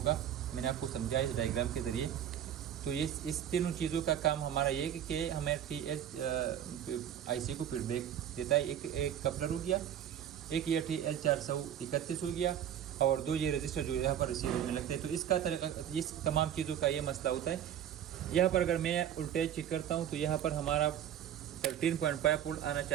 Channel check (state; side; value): quieter; left; 10.1 dB